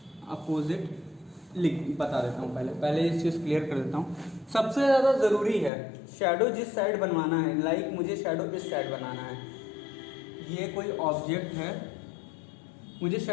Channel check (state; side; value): drops out; right; at 5.7 s